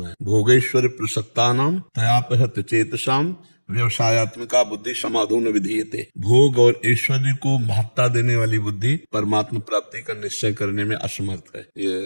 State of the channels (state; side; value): inverted; both; correlation -1.00